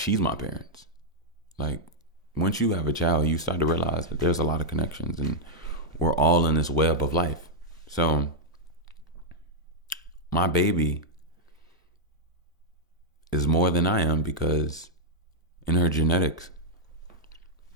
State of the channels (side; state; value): both; normal; correlation -0.04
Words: my parents. Like, once you have a child, you start to realize that there's a lot of connections and we're all in this web of life. So, my baby is more than I am because in her genetics,